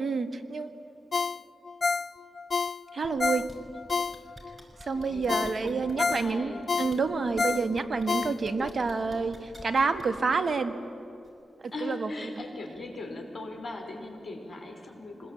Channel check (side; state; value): both; normal; correlation 0.86